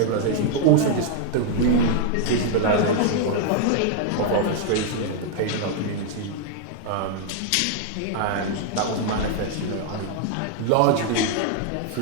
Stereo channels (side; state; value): both; different; correlation 0.00